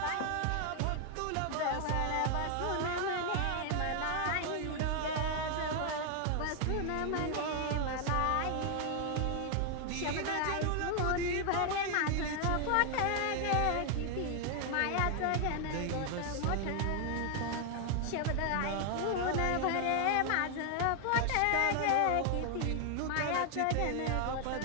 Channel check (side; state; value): both; different; correlation 0.00